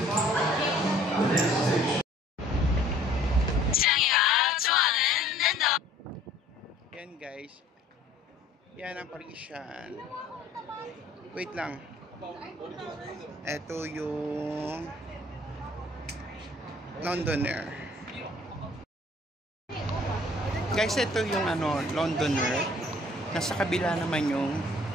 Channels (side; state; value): both; normal; correlation 0.55